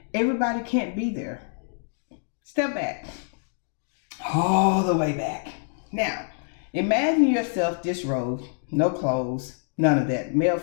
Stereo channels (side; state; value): right; silent; digital silence